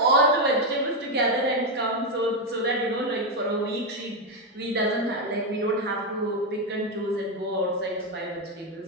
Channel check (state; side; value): normal; both; correlation 0.05